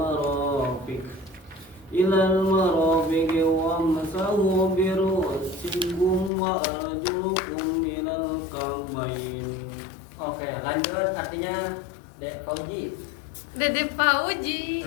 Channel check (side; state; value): right; drops out; at 6.3 s